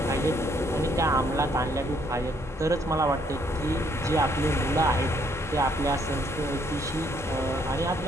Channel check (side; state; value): both; normal; correlation 0.68